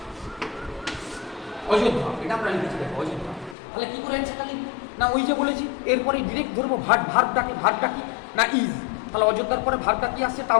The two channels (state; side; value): drops out; right; at 3.6 s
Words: অযোধ্যা, এটা আমরা লিখেছি দেখো, অযোধ্যা। তাহলে কি করে অ্যান্সারটা লিখবো না, ওই যে বলেছি এরপরে ডিরেক্ট ধরবো ভার্বটা কি না, ইজ। তাহলে অযোধ্যার পরে ভার্বটা কি আসছে,